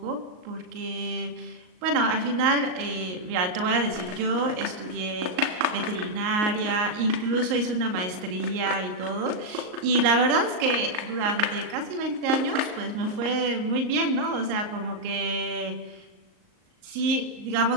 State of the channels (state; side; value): late; left; 38 ms